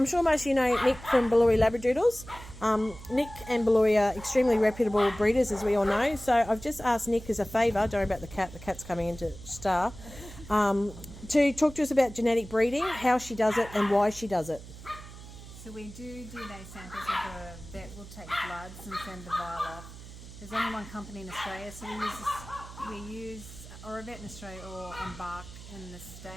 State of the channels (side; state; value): right; noise; hum, 15 dB below the sound